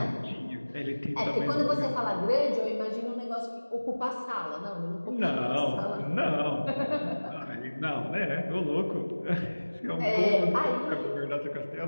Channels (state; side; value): inverted; both; correlation -1.00